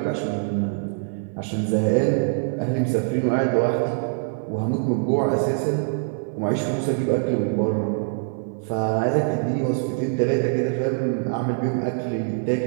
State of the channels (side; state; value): left; silent; 63 dB below the other